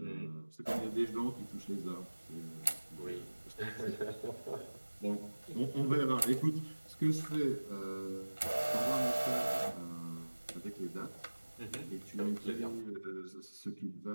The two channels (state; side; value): inverted; both; correlation -1.00